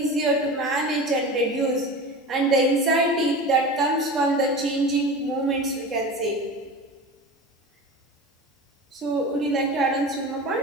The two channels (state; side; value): normal; both; correlation 0.32